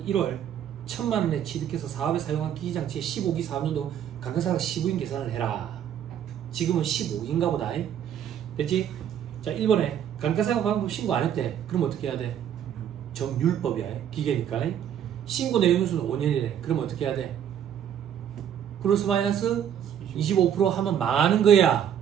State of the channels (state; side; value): quieter; left; 9.4 dB